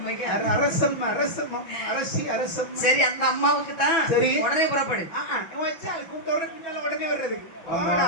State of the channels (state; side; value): late; right; 6.1 ms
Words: அரசம் அரசம் அரசி அரசம். சரி அந்த அம்மாவுக்கு தான். சரி உடனே புறப்படு. வச்சால் கூப்பிட்ட பின்னால உடனே வர்றது.